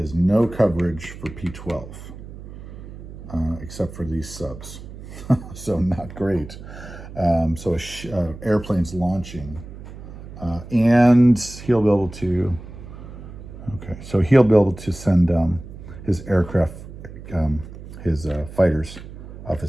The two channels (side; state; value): right; noise; hum, 14 dB below the sound